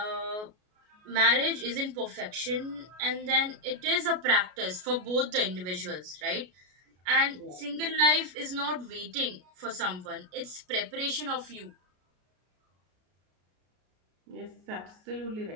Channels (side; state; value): left; late; 33 ms